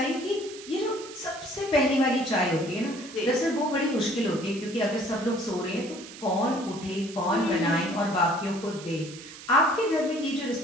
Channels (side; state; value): right; noise; hiss, 15 dB below the sound